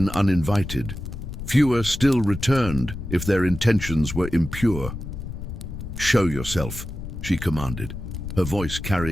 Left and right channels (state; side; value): noise; left; rumble, 8 dB below the sound